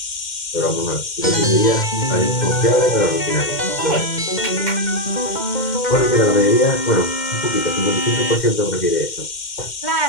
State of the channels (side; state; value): right; late; 2.1 ms